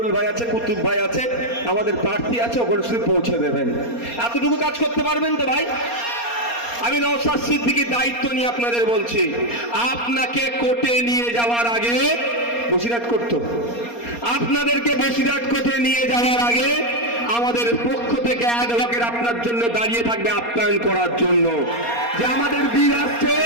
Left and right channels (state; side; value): late; right; 4.3 ms